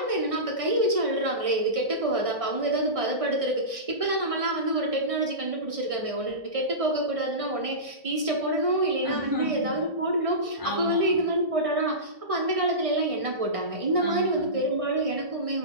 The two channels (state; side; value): late; left; 1.6 ms